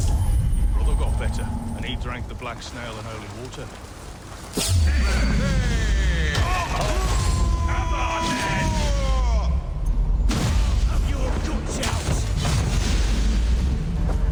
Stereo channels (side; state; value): both; identical; correlation 1.00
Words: Brother got better, and he drank the black snail and holy water. Come on, then! Have your guts out!